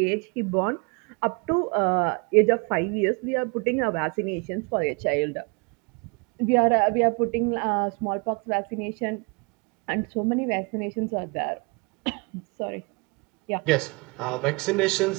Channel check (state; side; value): quieter; left; 29.9 dB